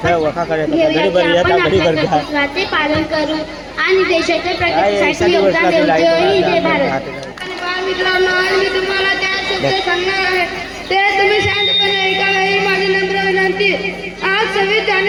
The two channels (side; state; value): both; identical; correlation 1.00